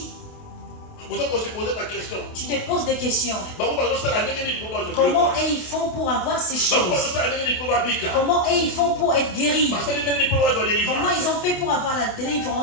Tu te poses des questions. Comment ils font pour avoir ces choses? Comment ils font pour être guéris? Comment ils ont fait pour avoir la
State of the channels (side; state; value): right; late; 28 ms